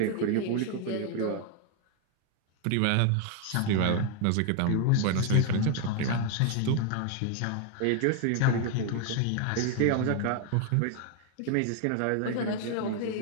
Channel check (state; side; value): different; both; correlation 0.01